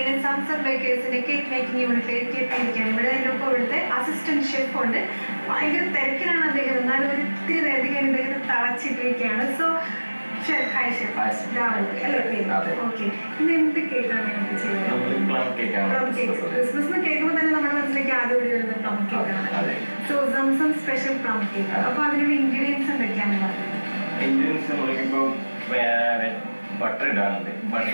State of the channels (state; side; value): inverted; both; correlation -1.00